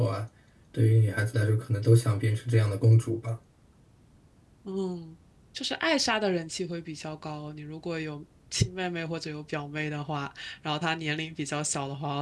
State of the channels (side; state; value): both; identical; correlation 1.00